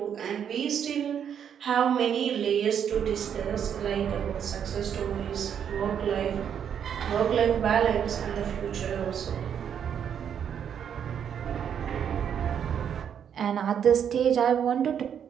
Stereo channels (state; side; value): quieter; left; 8.4 dB